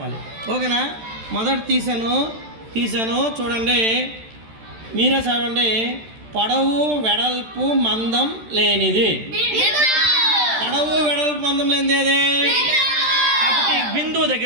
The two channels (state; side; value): late; left; 13 ms